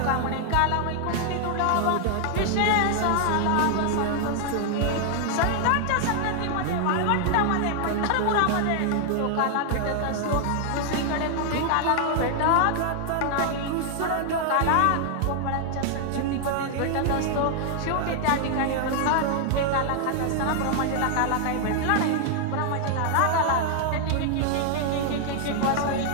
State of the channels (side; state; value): both; different; correlation 0.00